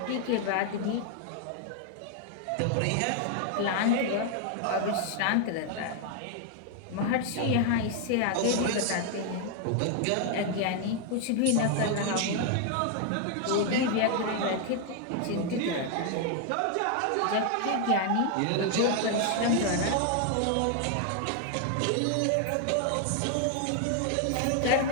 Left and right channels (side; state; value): both; different; correlation 0.00